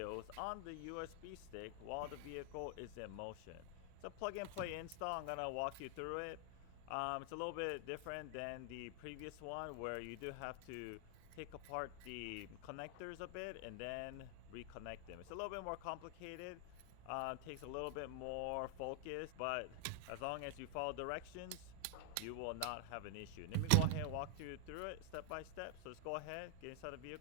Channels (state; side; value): different; both; correlation 0.00